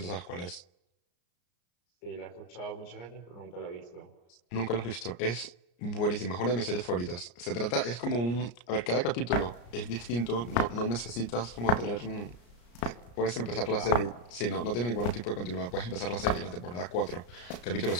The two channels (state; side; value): late; right; 34 ms